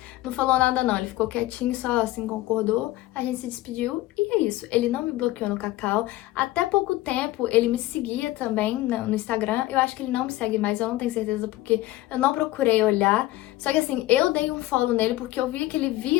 falou nada não, ele ficou quietinho, só assim concordou, a gente se despediu e é isso. Ele não me bloqueou no Kakao, até pouco tempo ele me seguia também no Instagram, eu acho que ele não me segue mais, eu não tenho certeza porque eu não procurei olhar, só que assim, eu dei um follow nele porque eu via que ele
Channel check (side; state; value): right; quieter; 17.2 dB